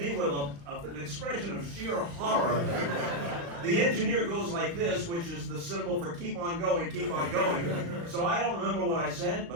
with an expression of sheer horror. The engineer goes like this, which is the symbol for keep on going, keep on going. So I don't remember what I said,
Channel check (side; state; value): left; late; 35 ms